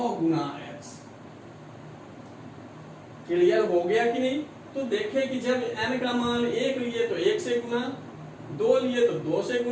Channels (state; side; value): identical; both; correlation 1.00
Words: गुना x। क्लियर हो गया कि नहीं? तो देखें कि जब n का मान 1 लिए तो 1 से गुना, 2 लिए तो 2 से